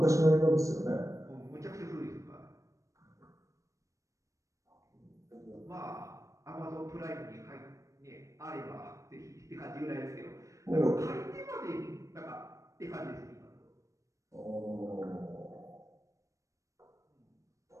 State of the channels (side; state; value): left; late; 0.15 ms